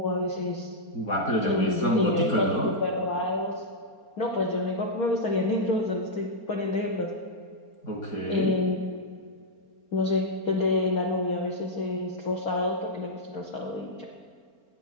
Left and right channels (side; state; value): right; late; 4.4 ms